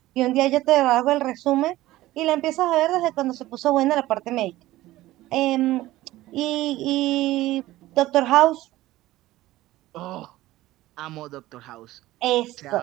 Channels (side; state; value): left; quieter; 16.6 dB